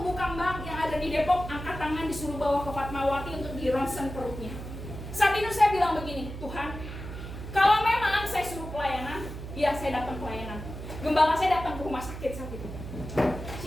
kembang yang ada di Depok angkat tangan disuruh bawa ke Fatmawati untuk di ronsen perutnya. Saat itu saya bilang begini, Tuhan, kalau memang saya suruh pelayanan, ya saya datang pelayanan. Gembala saya datang ke rumah sakit saat itu.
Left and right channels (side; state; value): right; noise; hum, 9 dB below the sound